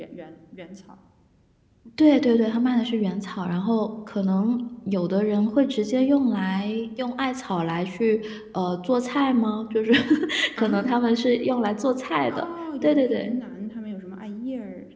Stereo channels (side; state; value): both; identical; correlation 1.00